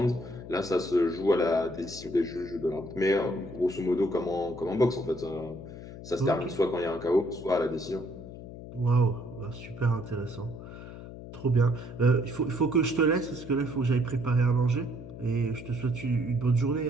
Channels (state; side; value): noise; left; hum, 13 dB below the sound